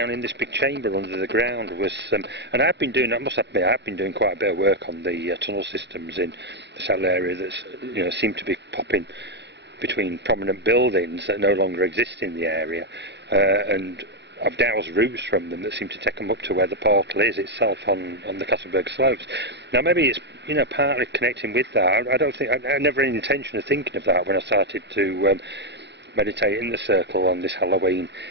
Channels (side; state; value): left; late; 0.50 ms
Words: in this big chamber under the ground was, and I've been doing, I must admit, I've been doing quite a bit of work on the tunnel systems in the Settle area that's, you know, seem to be popping between prominent buildings that no longer exist in the area, and I've dowsed routes from them that seem to take them up to where the portal is itself on the Castleberg slopes. Now maybe it's, you know, partly connecting with that. I don't think, I never had any intention of thinking of that when I started to meditate in the circle on this Halloween